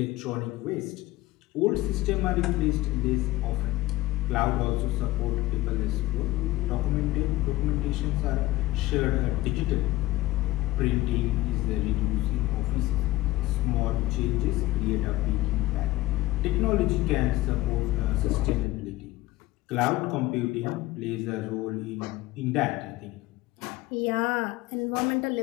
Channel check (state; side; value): quieter; right; 17.5 dB